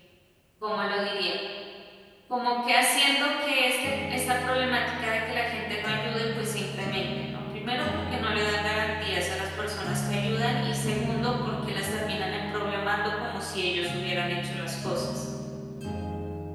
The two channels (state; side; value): identical; both; correlation 1.00